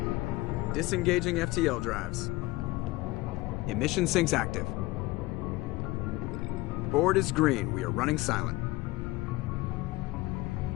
Disengaging FTL drives. Emission sinks active. Board is green. We are running silent.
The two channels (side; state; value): right; quieter; 20.2 dB